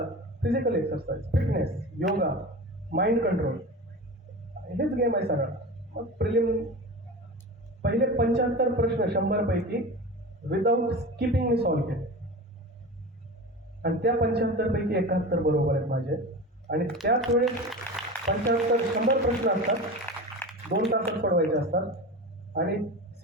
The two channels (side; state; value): both; normal; correlation 0.30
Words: physical exercise, fitness, yoga, mind control, हेच गेम आहे सगळा. मग प्रिलिम पहिले 75 प्रश्न 100 पैकी विदाऊट स्किपिंग मी सॉल्व्ह केले, आणि त्या 75 पैकी 71 बरोबर आहेत माझे. आणि त्याच वेळेस 100 प्रश्न असतात, 2 तासात सोडवायचे असतात, आणि